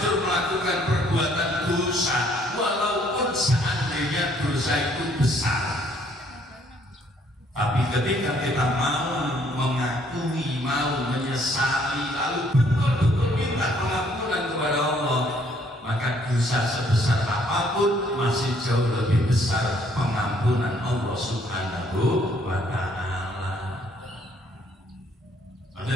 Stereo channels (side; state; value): both; normal; correlation 0.65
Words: melakukan perbuatan dosa, walaupun seandainya dosa itu besar. Tapi ketika kita mau mengakui, mau menyesali, lalu betul-betul minta pengampunan kepada Allah, maka dosa sebesar apapun masih jauh lebih besar pengampunan Allah Subhanahu wa Ta'ala.